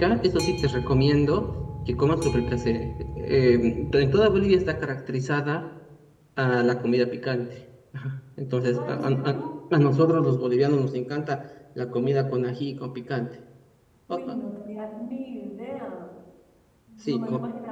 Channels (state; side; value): identical; both; correlation 1.00